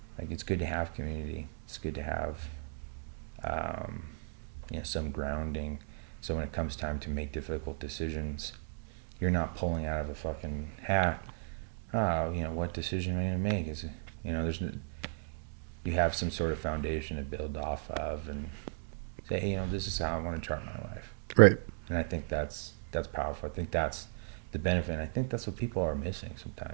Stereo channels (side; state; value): left; silent; digital silence